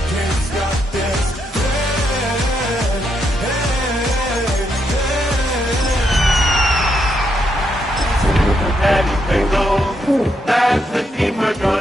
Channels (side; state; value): both; normal; correlation 0.79